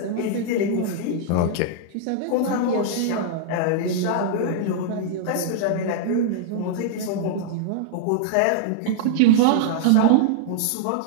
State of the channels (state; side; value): different; both; correlation -0.01